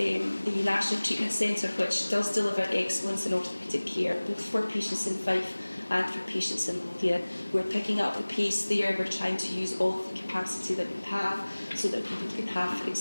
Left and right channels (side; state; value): both; inverted; correlation -1.00